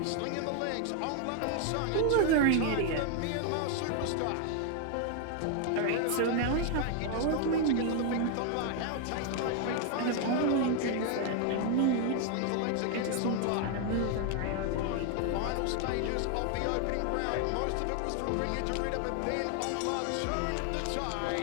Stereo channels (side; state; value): both; different; correlation 0.00